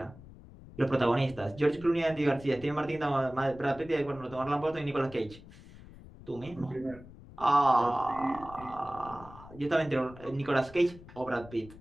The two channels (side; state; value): left; noise; rumble, 19 dB below the sound